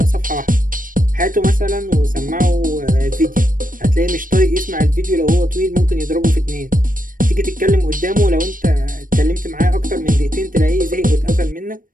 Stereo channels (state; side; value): late; left; 0.40 ms